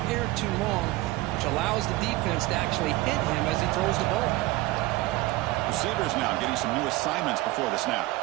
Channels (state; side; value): quieter; left; 19.5 dB